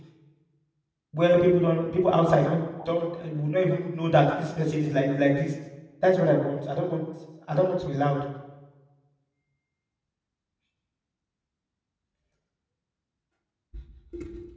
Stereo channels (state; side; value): identical; both; correlation 1.00